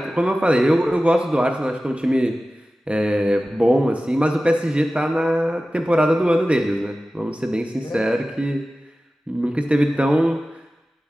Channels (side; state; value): both; normal; correlation 0.95